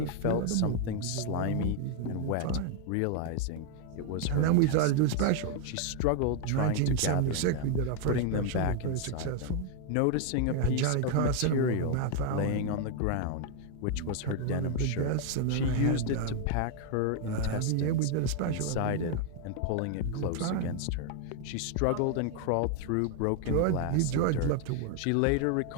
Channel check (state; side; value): different; both; correlation 0.00